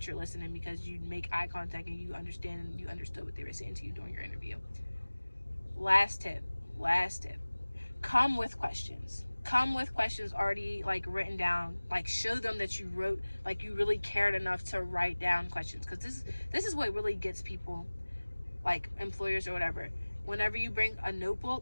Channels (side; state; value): both; inverted; correlation -1.00